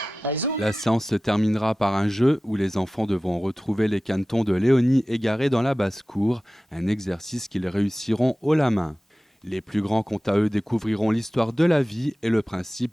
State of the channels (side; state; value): both; normal; correlation 0.96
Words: Allez, zoom. La séance se terminera par un jeu où les enfants devront retrouver les canetons de Léonie égarés dans la basse-cour, un exercice qu'ils réussiront haut la main. Les plus grands, quant à eux, découvriront l'histoire de la vie et le